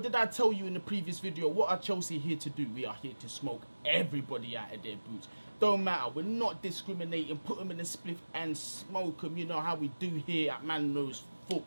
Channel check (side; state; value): both; inverted; correlation -1.00